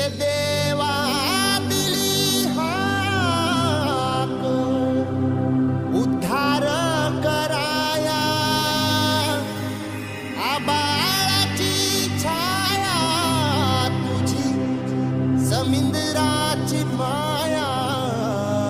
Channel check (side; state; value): both; identical; correlation 1.00